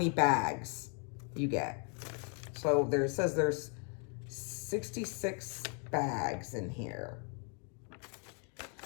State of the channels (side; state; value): right; quieter; 39.8 dB